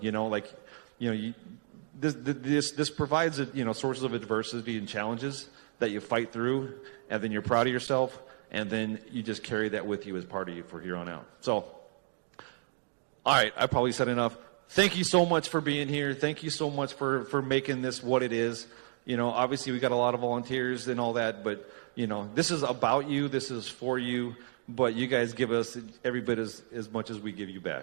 This provides sources of adversity and challenges that you fight through, and then you're proud of yourself, and then you just carry that with you as part of you for here on out. So, all right, I probably said enough. Thank you so much for being here. Thank you so much for making this what it is. Obviously we got a lot of volunteers and all that, but this is about you. This is for you. But you guys give us every bit as much as we give you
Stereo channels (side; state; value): left; silent; digital silence